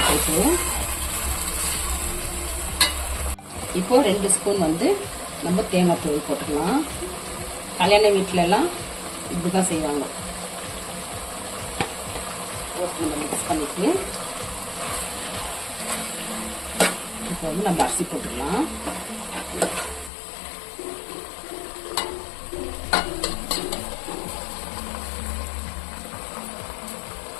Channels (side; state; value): right; drops out; at 20.1 s